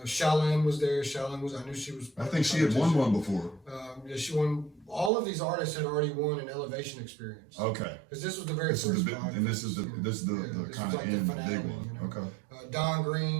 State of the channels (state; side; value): drops out; left; at 5.1 s